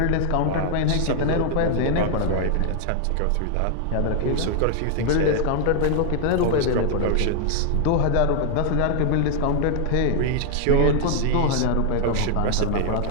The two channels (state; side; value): different; both; correlation 0.00